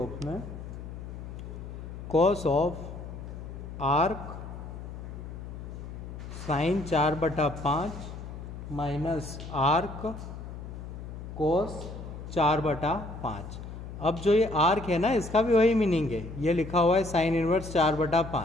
में cos of arc sine 4/5 minus arc cos 4/5। अब जो ये आर्क है ना, इसका भी वही मीनिंग है, ये लिखा हुआ है साइन इनवर्स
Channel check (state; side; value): noise; left; hum, 10 dB below the sound